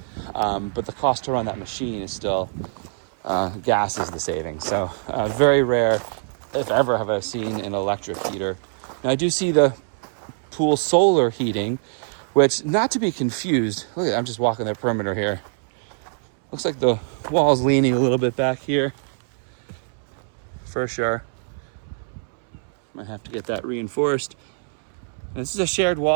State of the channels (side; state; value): left; silent; 63 dB below the other